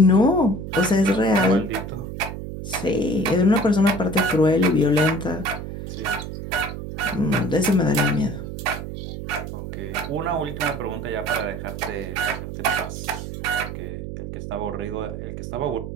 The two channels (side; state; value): right; noise; hum, 8 dB below the sound